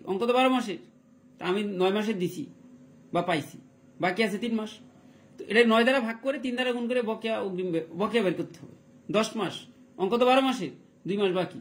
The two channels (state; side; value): identical; both; correlation 1.00